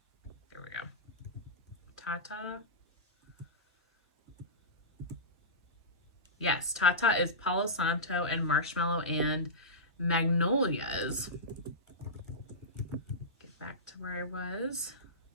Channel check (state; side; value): normal; both; correlation -0.17